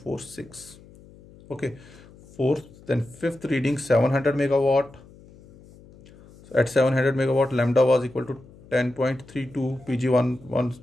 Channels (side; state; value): left; noise; hum, 23 dB below the sound